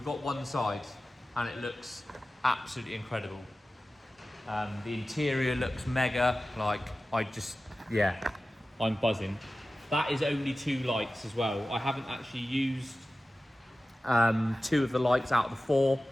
got one side and it looks absolutely incredible. The interior looks mega, like I'm buzzing. That is only 2 lights as well. I haven't actually used 2 of the lights out of the 4,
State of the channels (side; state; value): both; normal; correlation 0.96